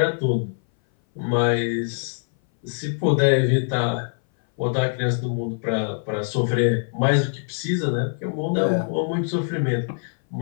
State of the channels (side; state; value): right; silent; 59 dB below the other